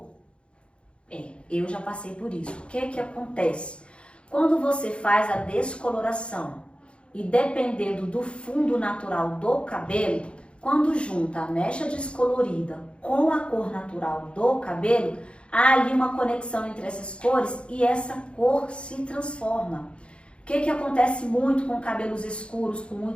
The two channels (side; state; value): right; late; 0.058 ms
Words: Eu já passei por isso. O que acontece? Quando você faz a descoloração e dependendo do fundo natural do cabelo, quando junta a mecha descolorida com a cor natural do cabelo, há ali uma conexão entre essas cores e essa cor se transforma. O que acontece muito com cabelos escuros, com